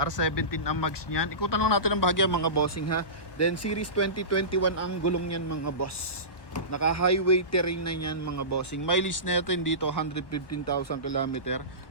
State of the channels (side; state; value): right; late; 1.2 ms